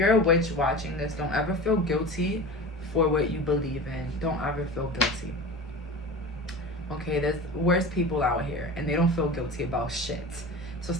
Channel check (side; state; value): both; normal; correlation 0.33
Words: a witch watching this, don't ever feel guilty for what you believe in. Don't ever feel guilty. Okay, there's worse people out here and they don't feel guilty about shit. So